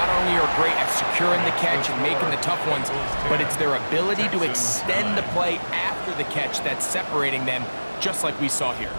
only are great at securing the catch and making the tough ones, but it's their ability to extend the play after the catch that's separating them, just like we saw here.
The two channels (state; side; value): inverted; both; correlation -1.00